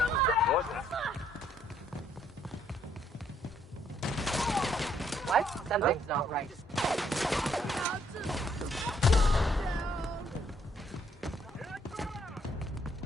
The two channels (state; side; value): normal; both; correlation 0.68